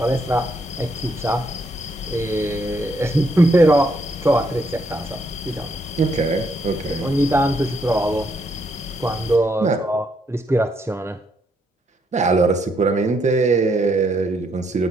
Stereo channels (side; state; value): both; normal; correlation 0.74